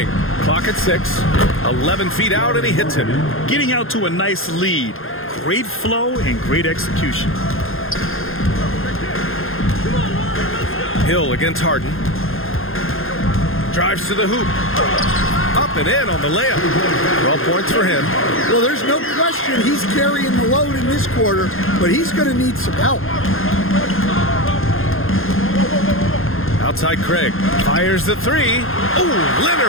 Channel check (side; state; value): right; late; 0.60 ms